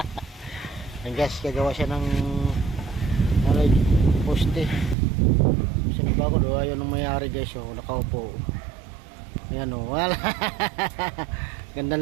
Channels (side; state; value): left; drops out; at 5.0 s